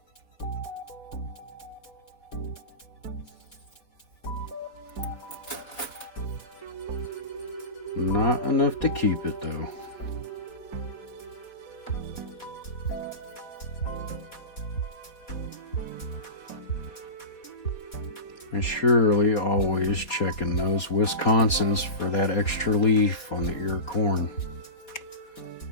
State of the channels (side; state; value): right; late; 4.2 ms